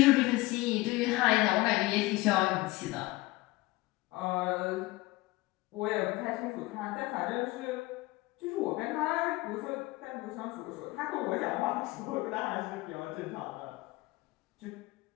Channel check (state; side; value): quieter; right; 20.5 dB